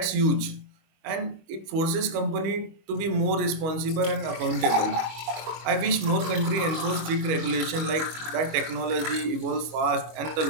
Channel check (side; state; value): left; late; 25 ms